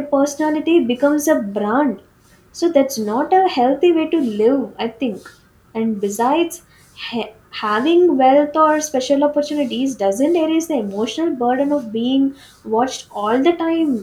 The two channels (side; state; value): both; identical; correlation 1.00